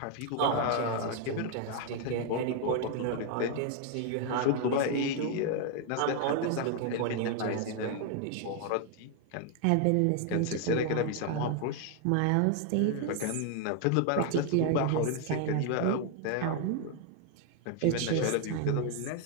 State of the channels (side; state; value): both; different; correlation 0.00